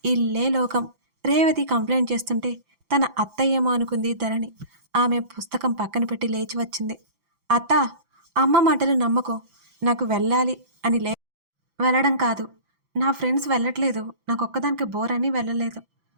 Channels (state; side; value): late; left; 5.9 ms